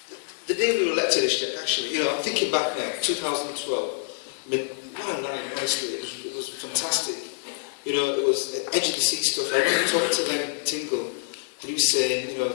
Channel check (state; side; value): silent; right; digital silence